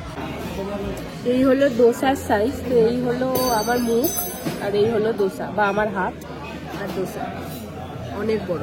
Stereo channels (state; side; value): identical; both; correlation 1.00